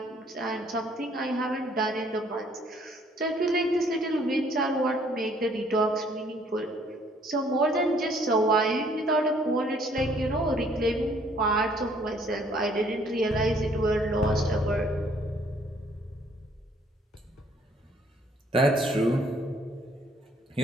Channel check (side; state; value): both; normal; correlation 0.62